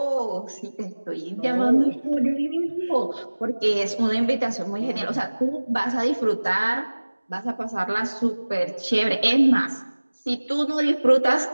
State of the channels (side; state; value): both; inverted; correlation -1.00